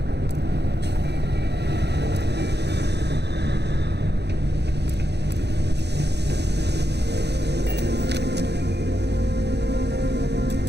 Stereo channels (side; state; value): left; late; 0.49 ms